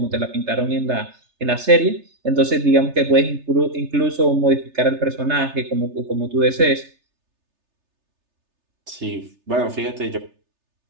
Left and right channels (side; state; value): left; late; 3.3 ms